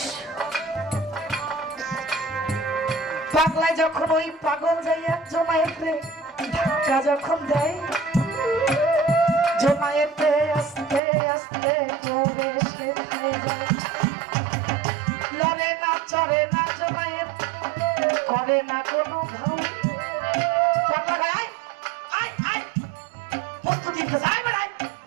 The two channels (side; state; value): left; drops out; at 11.0 s